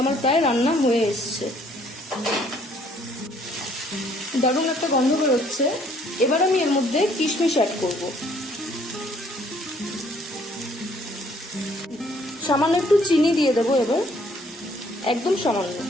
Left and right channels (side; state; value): both; normal; correlation 0.63